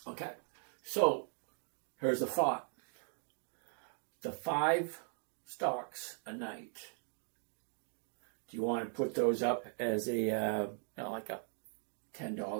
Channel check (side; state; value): left; silent; 52 dB below the other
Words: Okay, so here's a thought. The 5 stocks a night. Do you want to put those up as a like a $10